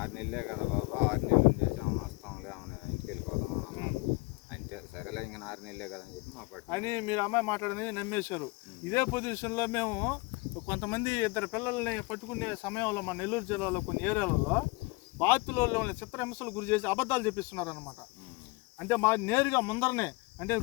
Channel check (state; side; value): quieter; right; 25.9 dB